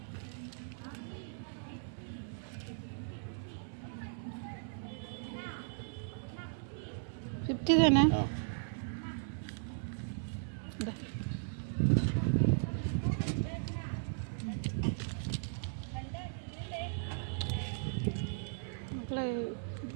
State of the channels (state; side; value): silent; left; digital silence